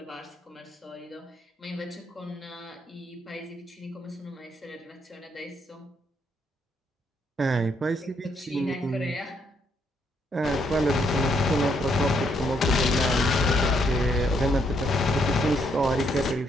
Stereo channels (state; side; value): normal; both; correlation 0.73